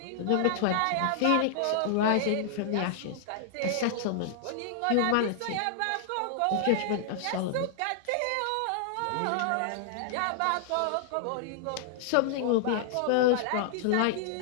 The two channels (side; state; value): both; different; correlation -0.01